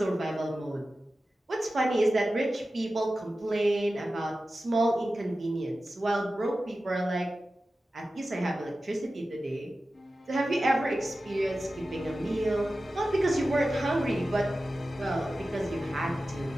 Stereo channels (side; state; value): both; normal; correlation 0.94